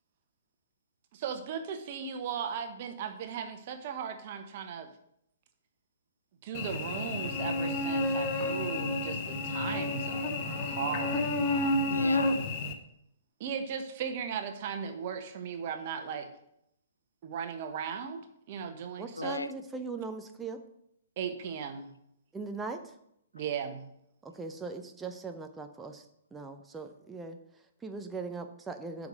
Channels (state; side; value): inverted; both; correlation -0.39